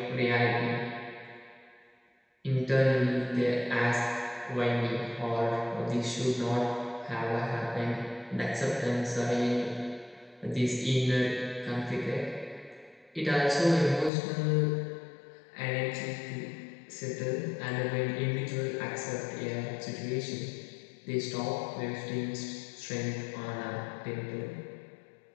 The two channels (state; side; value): drops out; right; at 14.1 s